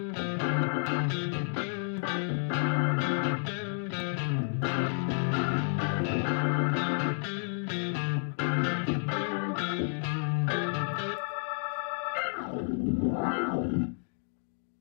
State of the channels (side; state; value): right; silent; digital silence